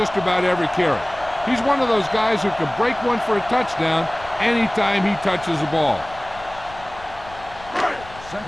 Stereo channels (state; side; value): noise; left; rumble, 19 dB below the sound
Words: about every carry. He's one of those guys who can break one for a touchdown anytime he touches the ball.